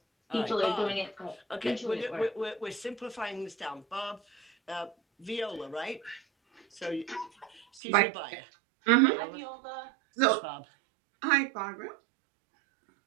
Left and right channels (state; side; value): drops out; left; at 7.8 s